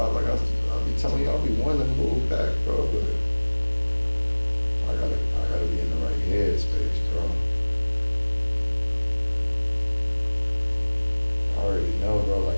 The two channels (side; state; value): both; inverted; correlation -1.00